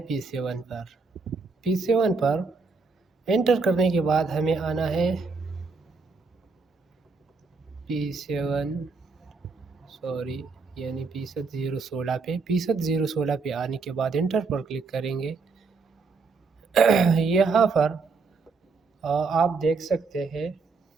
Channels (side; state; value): left; quieter; 4.4 dB